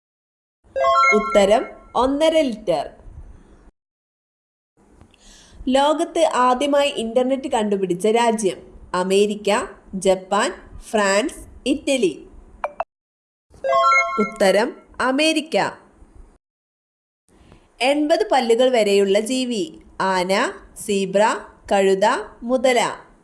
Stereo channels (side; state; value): both; identical; correlation 1.00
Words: ഉത്തരം 1.5 ലിറ്റർ. ലോകത്ത് ആദ്യമായി ഇന്റർനെറ്റ് കണ്ടുപിടിച്ച രാജ്യം: അമേരിക്ക, ജപ്പാൻ, ഫ്രാൻസ്, ഇറ്റലി. ഉത്തരം അമേരിക്ക. 80 പല്ലുകൾ വരെയുള്ള ജീവി: ആന, സീബ്ര, കഴുത, മുതല.